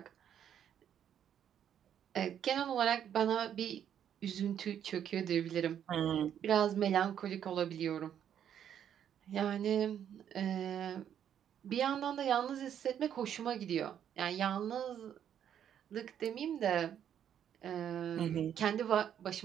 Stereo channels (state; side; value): quieter; left; 9.4 dB